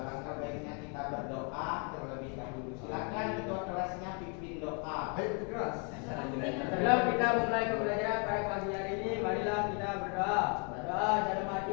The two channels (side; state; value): right; quieter; 36.9 dB